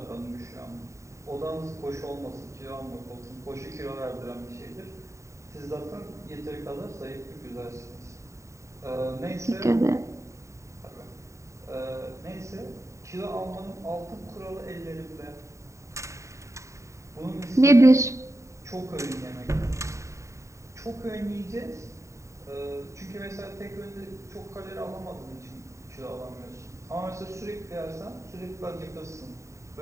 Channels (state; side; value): late; left; 0.14 ms